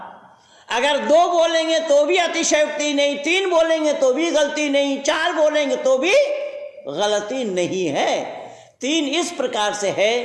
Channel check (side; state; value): both; identical; correlation 1.00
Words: अगर 2 बोलेंगे तो भी अतिशयोक्ति नहीं, 3 बोलेंगे तो भी गलती नहीं, 4 बोलेंगे तो भी गलती नहीं है। 3 इस प्रकार से है